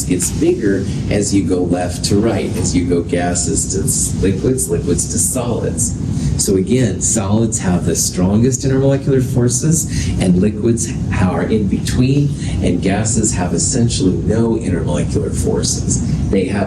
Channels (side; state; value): both; identical; correlation 1.00